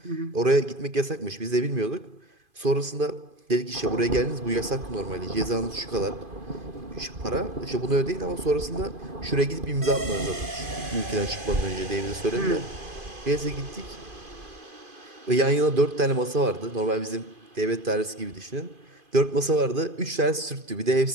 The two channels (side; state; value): left; late; 2.5 ms